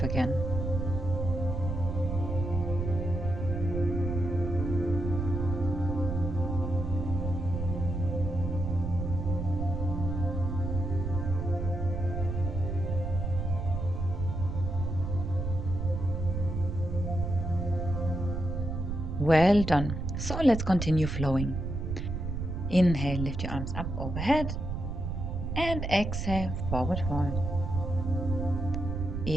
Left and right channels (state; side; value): noise; right; rumble, 3 dB below the sound